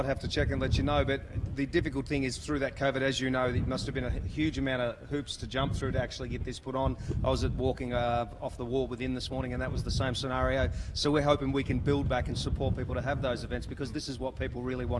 have to check and let you know. But the difficult thing is through that COVID, as you know, it must have been a huge amount of hoops to jump through to actually get this put on. I was walking off the wall within this morning, and that was the same scenario. So we're hoping we can build back and support people to have those events, because this is what people really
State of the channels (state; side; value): identical; both; correlation 1.00